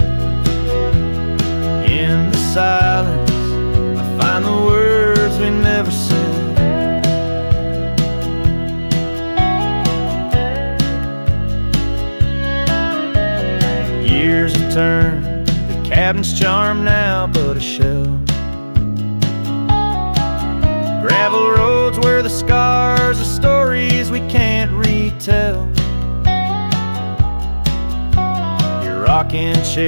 In the silence, I find the words we never said. Years have turned, the cabin's charm now but a shell. Gravel roads where the scars are stories we can't retell. Your rocking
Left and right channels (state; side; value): inverted; both; correlation -1.00